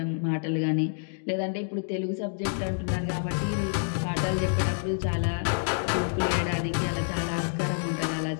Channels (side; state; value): right; silent; digital silence